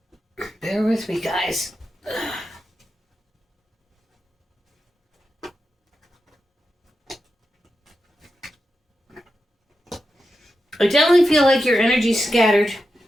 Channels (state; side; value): normal; both; correlation 0.89